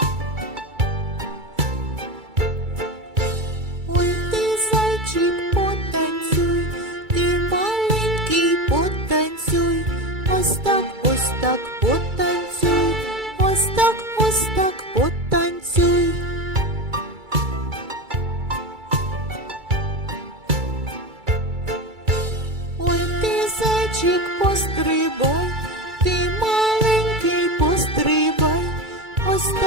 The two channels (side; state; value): left; late; 2.3 ms